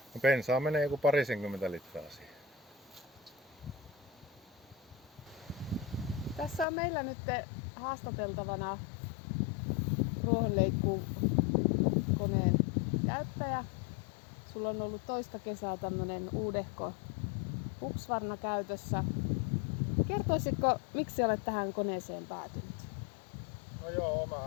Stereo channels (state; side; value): drops out; right; at 6.7 s